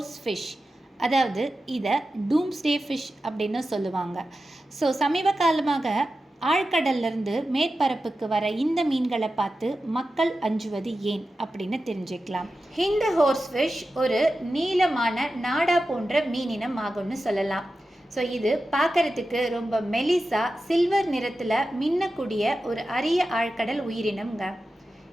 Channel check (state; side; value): normal; both; correlation 0.93